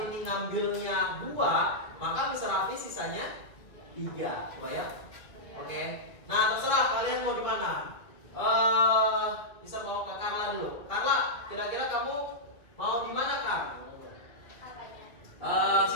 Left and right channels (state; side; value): late; right; 2.1 ms